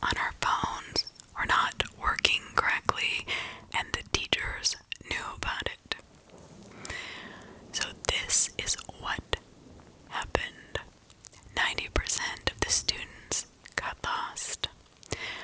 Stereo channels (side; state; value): both; identical; correlation 1.00